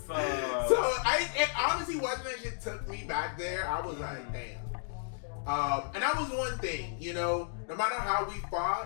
it honestly, watching that shit took me back there. I was like, damn. And that was one thing, you know, no matter how we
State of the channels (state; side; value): silent; right; digital silence